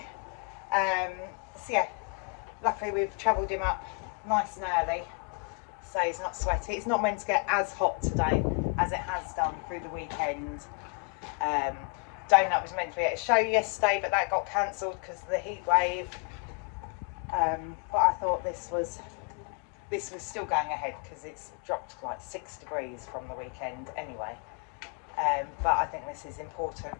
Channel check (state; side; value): quieter; right; 37.3 dB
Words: So yeah, luckily we've travelled him up nice and early, so he's not sweaty. It's not meant to get as hot today as it has done through the weekend. Donut was meant to be at a show yesterday, but that got cancelled because of the heat wave. But I thought this was still going ahead because it's dropped like 6 degrees from the weekend anyway. But I think this is important